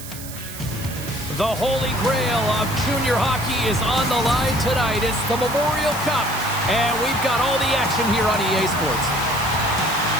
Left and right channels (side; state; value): right; noise; hiss, 12 dB below the sound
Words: The holy grail of junior hockey is on the line tonight. It's the Memorial Cup, and we've got all the action here on EA Sports.